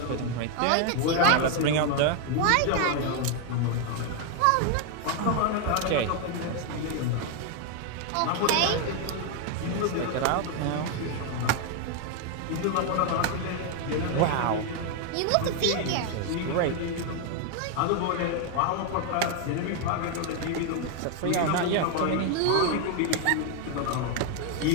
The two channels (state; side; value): different; both; correlation 0.01